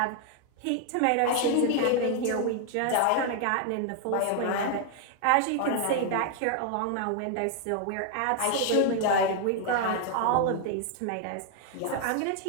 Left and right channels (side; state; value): both; different; correlation 0.00